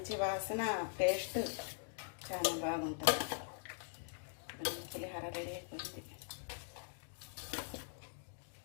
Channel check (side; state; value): right; silent; digital silence